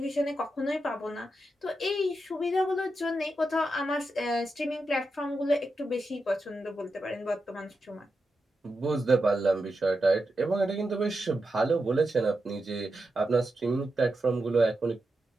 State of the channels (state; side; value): normal; both; correlation 0.88